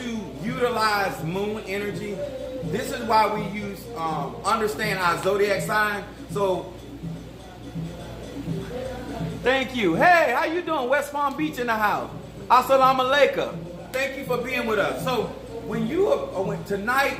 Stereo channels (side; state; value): both; identical; correlation 1.00